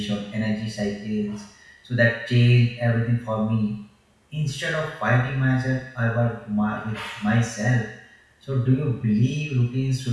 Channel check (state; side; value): identical; both; correlation 1.00